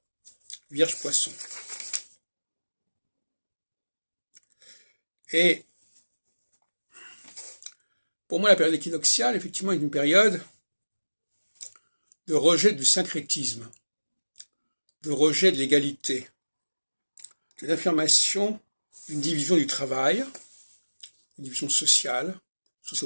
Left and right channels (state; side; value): inverted; both; correlation -1.00